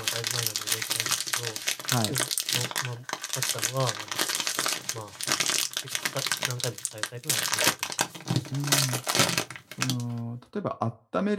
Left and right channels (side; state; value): both; identical; correlation 1.00